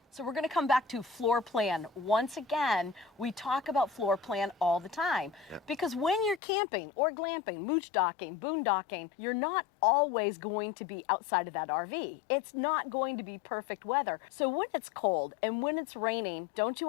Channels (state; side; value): drops out; right; at 6.4 s